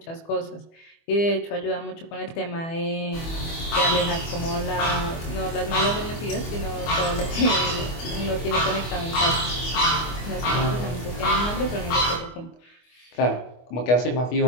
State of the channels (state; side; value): late; right; 24 ms